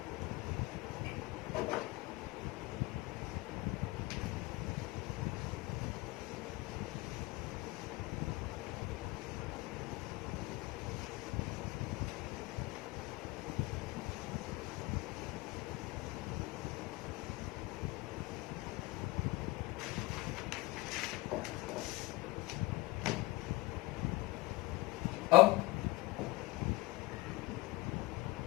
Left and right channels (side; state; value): right; quieter; 21.3 dB